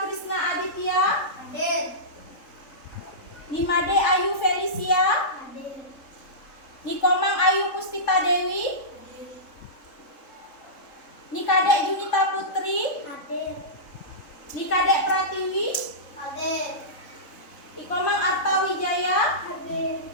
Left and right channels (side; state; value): right; late; 3.7 ms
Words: Aditya. Hadir. Nimade Ayu Felicia. Hadir. Nikomang Ayu Puspita Dewi. Nikade Junita Putri. Hadir. Nikade Pratiwi. Hadir. Ikomang Arta Wijaya. Hadir.